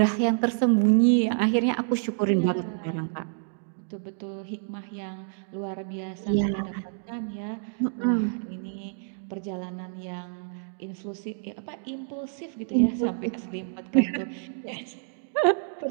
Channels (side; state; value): left; silent; digital silence